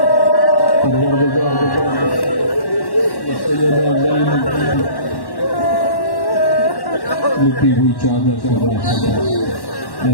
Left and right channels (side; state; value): right; late; 1.1 ms